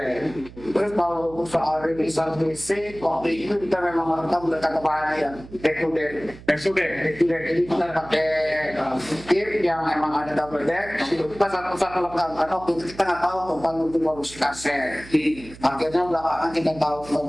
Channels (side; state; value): right; noise; hum, 18 dB below the sound